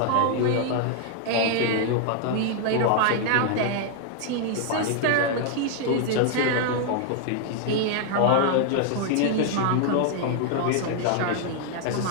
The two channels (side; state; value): both; different; correlation 0.00